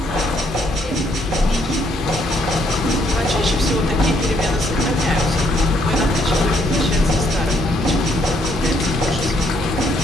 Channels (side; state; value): both; normal; correlation 0.70